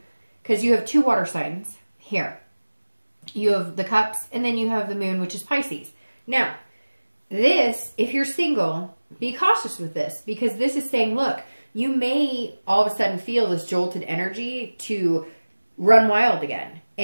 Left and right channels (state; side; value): inverted; both; correlation -1.00